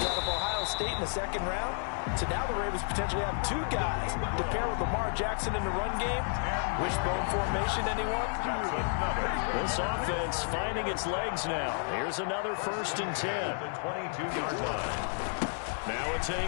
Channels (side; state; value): right; silent; 55 dB below the other